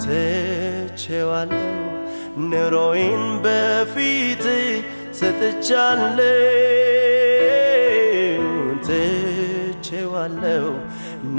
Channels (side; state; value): both; inverted; correlation -1.00